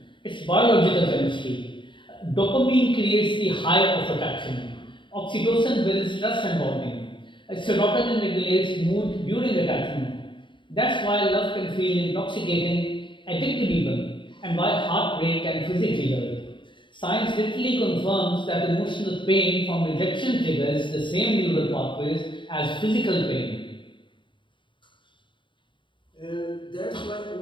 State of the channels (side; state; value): right; late; 0.24 ms